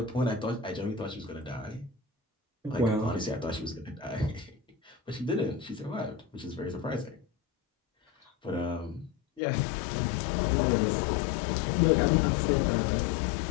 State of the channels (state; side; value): drops out; right; at 9.4 s